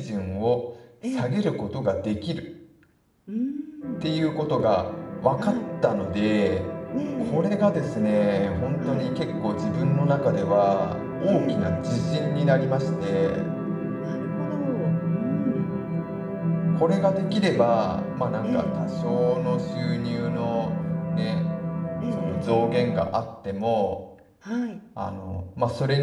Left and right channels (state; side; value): identical; both; correlation 1.00